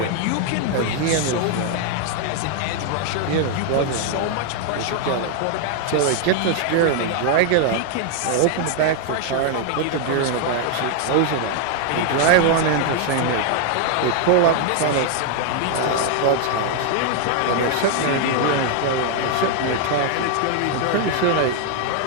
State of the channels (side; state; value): both; different; correlation 0.00